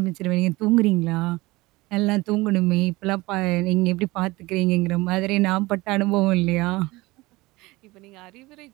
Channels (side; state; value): left; quieter; 21.1 dB